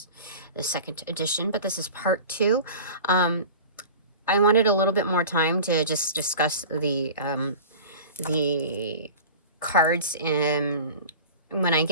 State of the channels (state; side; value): inverted; both; correlation -0.37